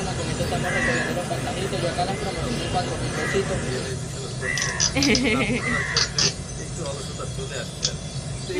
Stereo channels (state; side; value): identical; both; correlation 1.00